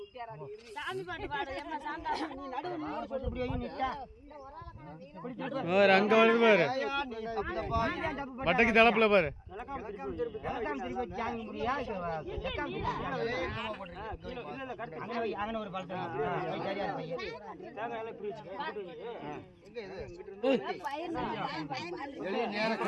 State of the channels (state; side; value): identical; both; correlation 1.00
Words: அங்க வருது பாரு. பட்டைக்கு தலப்புல பாரு.